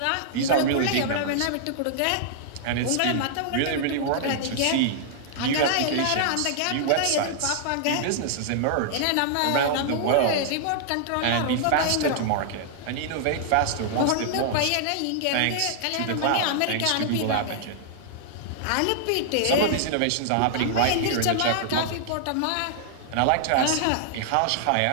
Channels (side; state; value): both; different; correlation -0.01